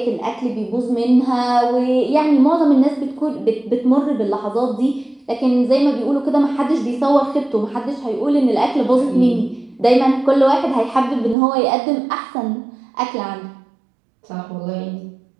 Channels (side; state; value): left; drops out; at 11.4 s